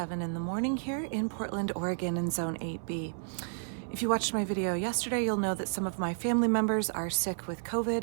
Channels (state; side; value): silent; left; 57 dB below the other